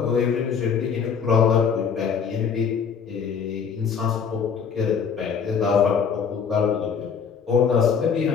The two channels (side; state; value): right; quieter; 6.6 dB